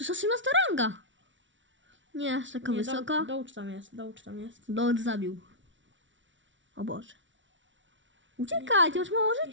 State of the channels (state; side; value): late; left; 0.55 ms